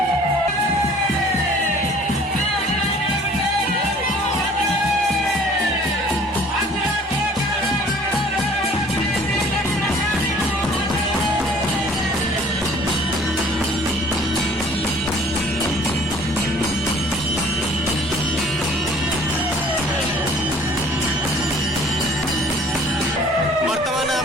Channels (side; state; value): both; normal; correlation 0.52